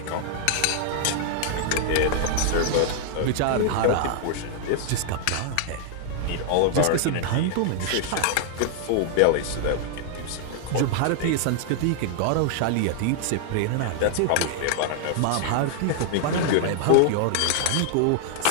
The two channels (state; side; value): different; both; correlation 0.00